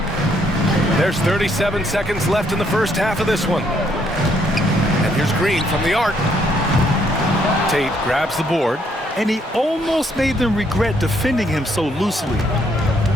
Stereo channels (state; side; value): normal; both; correlation 0.70